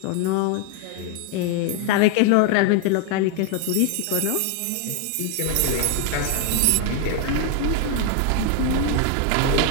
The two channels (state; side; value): different; both; correlation 0.01